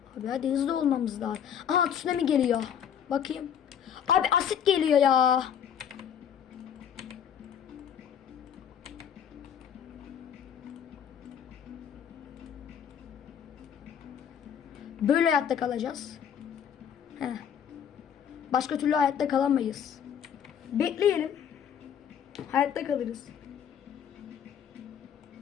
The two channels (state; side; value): quieter; right; 8.5 dB